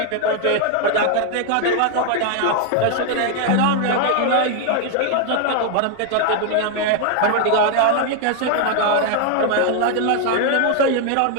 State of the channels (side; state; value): both; different; correlation 0.00